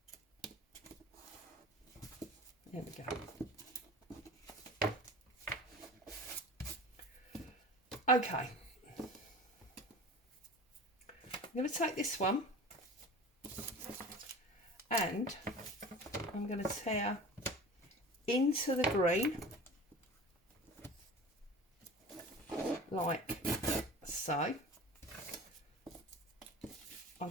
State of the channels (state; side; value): normal; both; correlation 0.38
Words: There we go. Okay. I'm going to take this one and I'm going to tear into the green, like so. I'm